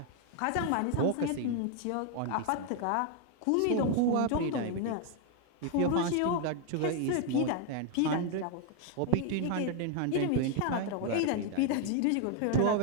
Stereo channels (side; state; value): both; different; correlation 0.00